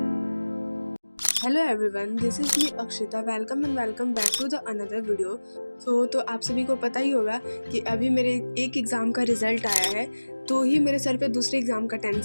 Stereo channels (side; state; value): both; inverted; correlation -1.00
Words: everyone, this is me Akshita. Welcome and welcome back to the another video. तो आप सभी को पता ही होगा कि अभी मेरे एक एग्ज़ाम का रिज़ल्ट आया है, तो ही मेरे सर पे दूसरे एग्ज़ाम का